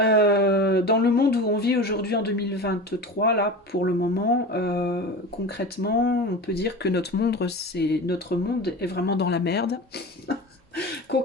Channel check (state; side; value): normal; both; correlation 0.31